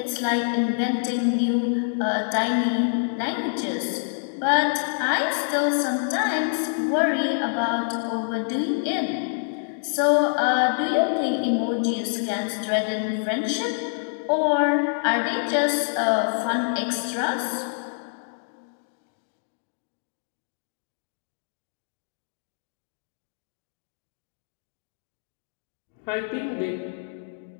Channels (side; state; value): right; silent; digital silence